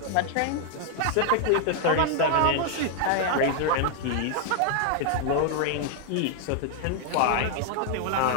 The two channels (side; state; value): both; different; correlation 0.00